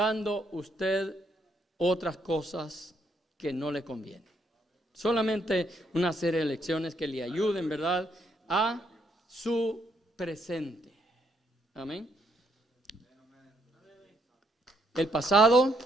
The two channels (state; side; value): normal; both; correlation 0.74